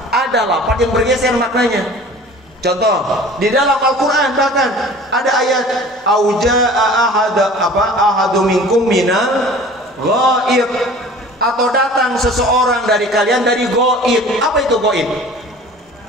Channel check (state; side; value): normal; both; correlation 0.44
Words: ada lafaz yang bergeser maknanya. Contoh, di dalam Al-Qur'an bahkan ada ayat ahadu minkum minal ghaib, atau datang seseorang dari kalian dari ghaib. Apa itu ghaib?